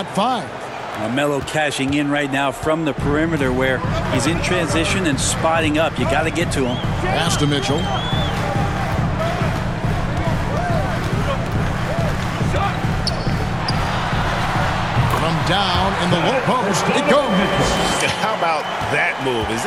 5. Melo cashing in right now from the perimeter where he's in transition and spotting up. You got to get to him. Pass to Mitchell. From down in the low post, it goes. How about that move? Is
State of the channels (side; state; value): both; identical; correlation 1.00